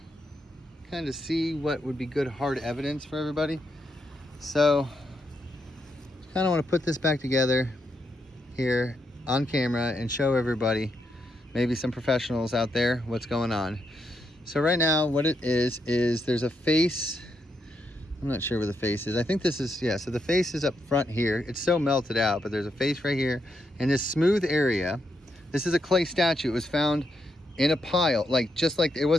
kind of see what would be good hard evidence for everybody. So kind of want to put this back together here on camera and show everybody, maybe some professionals out there, what's going on. So right now what it is there's a face. I'm not sure where the face is. I think this is, yeah, so the face is up front here. It's so melted out, but there's a face right here. And this smooth area, this is a clay statue. It was found in a pile, like just like it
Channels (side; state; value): both; normal; correlation 0.81